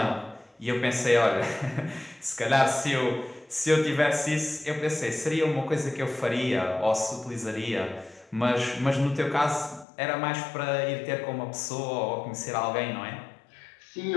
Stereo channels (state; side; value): drops out; right; at 9.9 s